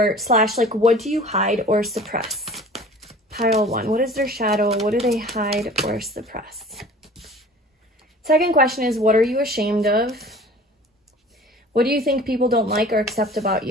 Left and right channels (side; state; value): both; normal; correlation 0.44